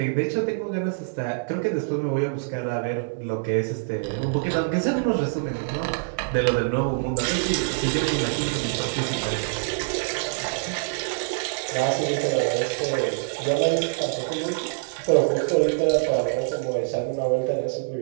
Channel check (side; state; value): left; silent; 62 dB below the other